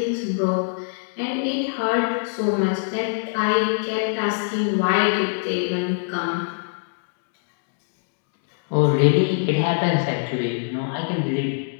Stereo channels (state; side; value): silent; right; digital silence